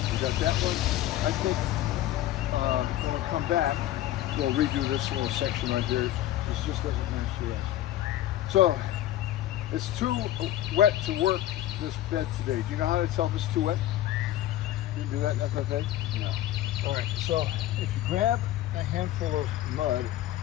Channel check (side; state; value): right; quieter; 13.6 dB